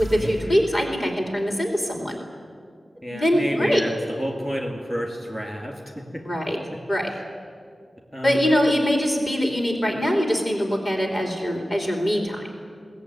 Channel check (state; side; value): normal; both; correlation 0.95